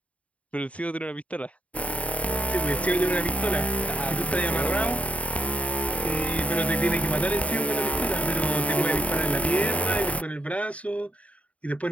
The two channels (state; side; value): late; right; 0.066 ms